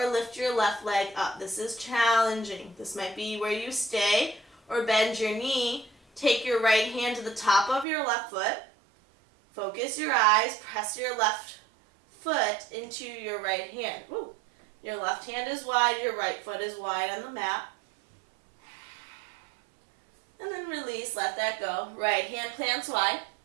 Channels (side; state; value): left; drops out; at 7.9 s